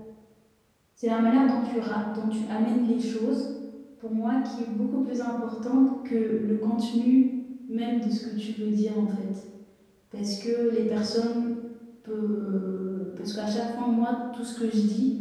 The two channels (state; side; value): identical; both; correlation 1.00